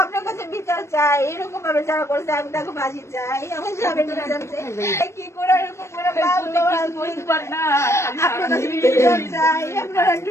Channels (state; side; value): late; right; 0.13 ms